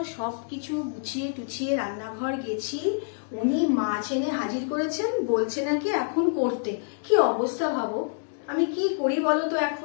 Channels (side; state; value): right; silent; digital silence